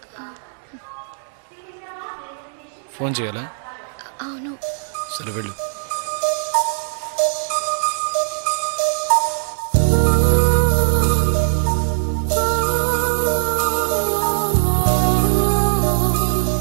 ఫోన్ చేయాలా? అవును. సరే వెళ్ళు.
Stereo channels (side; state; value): left; silent; digital silence